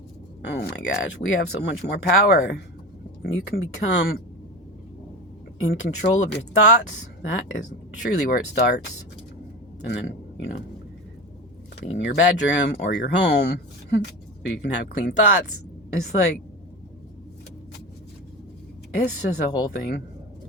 Oh my gosh, we have so much more power. You can become in control of your thoughts. That is truly where it starts. And then, clean your bedroom or your home so you can have clean thoughts. It's like, it's just a whole thing.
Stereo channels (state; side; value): normal; both; correlation 0.27